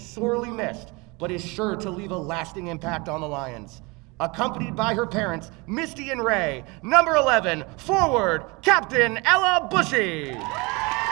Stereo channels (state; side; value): quieter; left; 26.7 dB